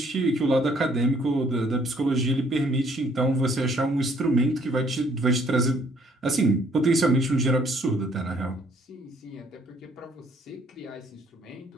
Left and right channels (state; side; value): normal; both; correlation 0.63